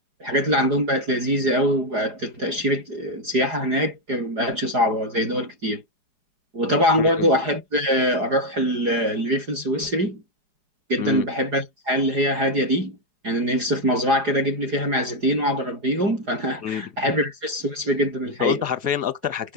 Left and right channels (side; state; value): left; late; 4.9 ms